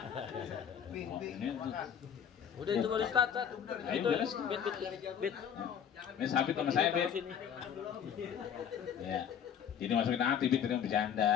Bing, Oh, bing, ini tuh. makan. Udah itu baru start. Ayo, Itu beres. bit. Ini sabit sama saya bit. Sini. Ya. Jadi masukin hati bit tadi mau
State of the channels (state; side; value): quieter; right; 8.3 dB